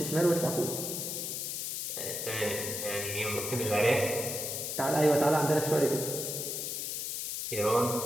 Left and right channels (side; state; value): left; noise; hiss, 3 dB below the sound